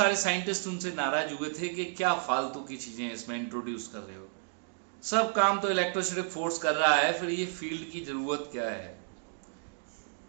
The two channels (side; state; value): left; silent; digital silence